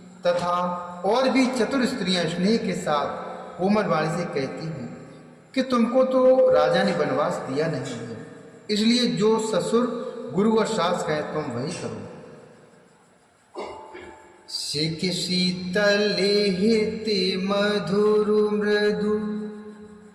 तथा और भी चतुर स्त्रियां स्नेह के साथ कोमल वाणी से कहती हैं कि तुमको तो राजा ने वनवास दिया नहीं है, इसलिए जो ससुर गुरु और सास कहें तुम वही करो। सिख शीतल हिते मधुर मृदु,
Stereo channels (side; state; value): both; identical; correlation 1.00